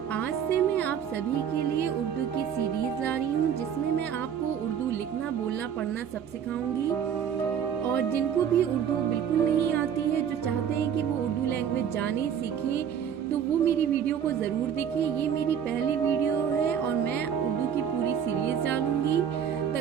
आज से मैं आप सभी के लिए उर्दू की सीरीज ला रही हूँ जिसमें मैं आपको उर्दू लिखना बोलना पढ़ना सब सिखाऊंगी। और जिनको भी उर्दू बिल्कुल नहीं आती है, जो चाहते हैं कि वो उर्दू लैंग्वेज जाने सीखें, तो वो मेरी वीडियो को ज़रूर देखें। ये मेरी पहली वीडियो है और मैं उर्दू की पूरी सीरीज डालूंगी।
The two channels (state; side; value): quieter; left; 8.4 dB